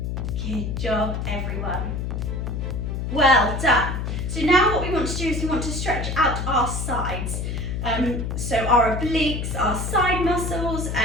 Good job, everyone. Well done. So now what we want to do is we want to stretch out our sides. So our obliques, our side muscles.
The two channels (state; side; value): noise; left; hum, 3 dB below the sound